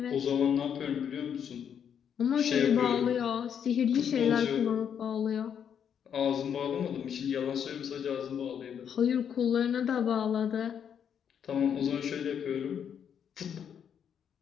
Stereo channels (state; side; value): quieter; right; 8.2 dB